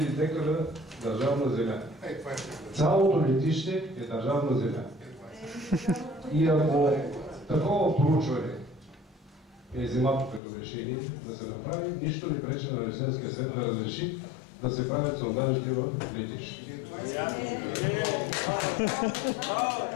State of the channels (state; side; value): drops out; right; at 10.4 s